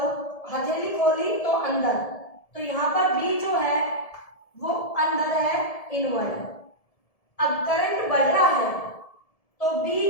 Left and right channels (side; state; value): right; late; 1.7 ms